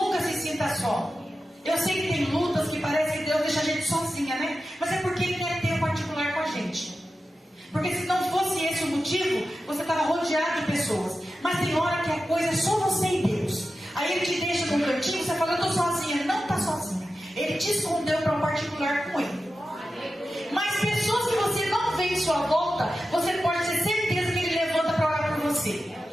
se sinta só. Eu sei que tem lutas que parece que Deus deixa a gente sozinha, né? Mas é porque Ele quer ter um particular com a gente. Porque se não fosse esse o motivo, você estava rodeado de pessoas. Mas tem hora que a coisa é só você e Deus. Aí Ele te deixa num cantinho, você fala, eu estou sozinha. Ele não está sozinha. Ele te escondeu para um particular com Ele. Mas pessoas que você não vê em sua volta, você pode ter certeza que Ele levanta para orar por você.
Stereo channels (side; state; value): both; normal; correlation 0.92